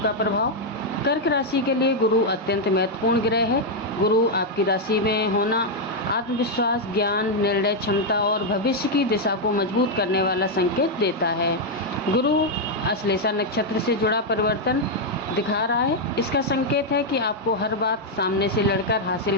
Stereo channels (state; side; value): normal; both; correlation -0.01